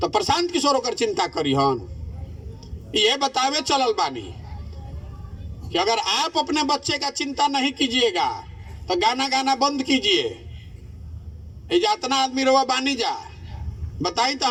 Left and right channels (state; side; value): identical; both; correlation 1.00